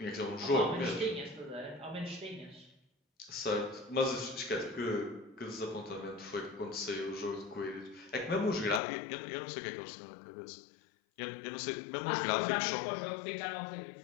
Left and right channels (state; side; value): drops out; right; at 8.8 s